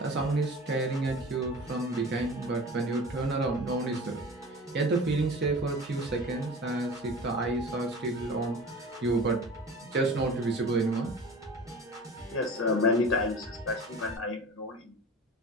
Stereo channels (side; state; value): both; normal; correlation 0.38